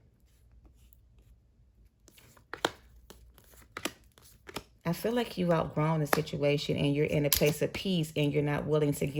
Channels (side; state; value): both; identical; correlation 1.00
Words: I feel like you've outgrown the situation and you're in a place of peace, and you're not willing to